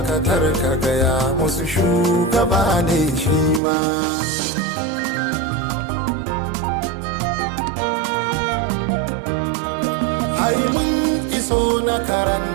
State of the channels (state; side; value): drops out; left; at 3.6 s